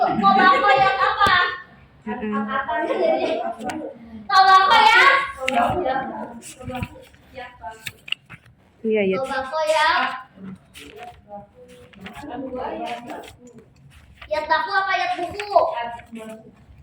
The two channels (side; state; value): both; identical; correlation 1.00